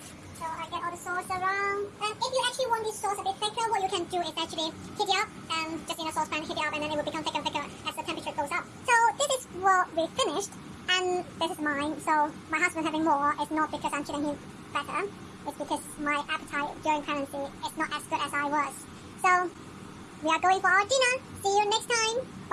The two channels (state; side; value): identical; both; correlation 1.00